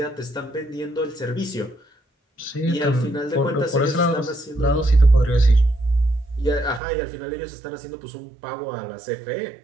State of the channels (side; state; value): left; drops out; at 6.8 s